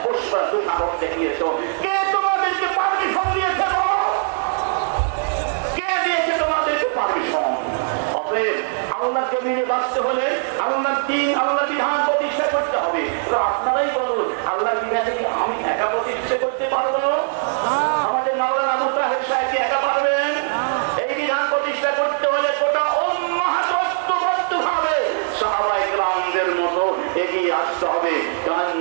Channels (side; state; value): left; silent; digital silence